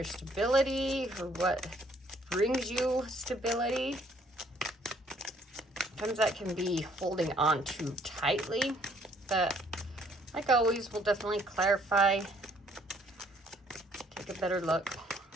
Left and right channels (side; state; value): both; normal; correlation 0.64